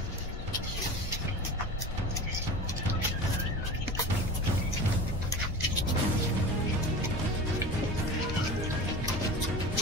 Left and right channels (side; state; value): both; normal; correlation 0.33